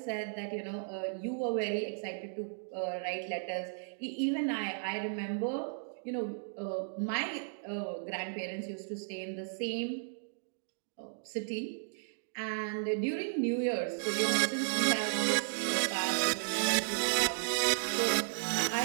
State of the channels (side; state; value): left; silent; digital silence